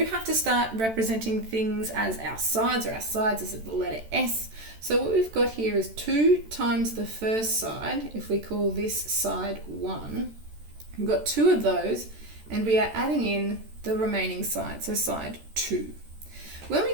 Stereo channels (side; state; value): left; late; 13 ms